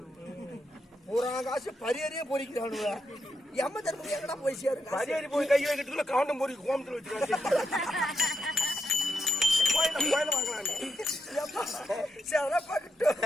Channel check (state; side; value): normal; both; correlation 0.82